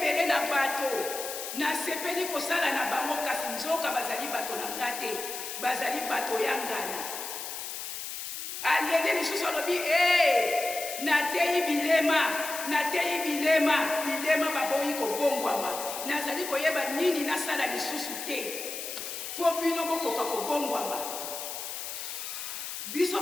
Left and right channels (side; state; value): left; noise; hiss, 7 dB below the sound